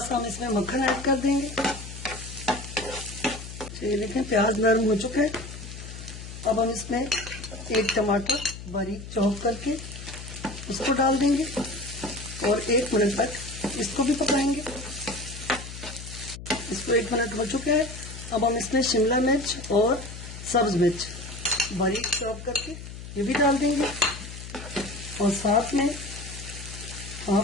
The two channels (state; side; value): noise; left; hum, 12 dB below the sound